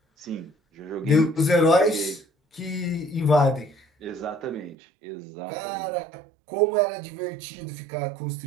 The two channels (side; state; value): left; drops out; at 4.8 s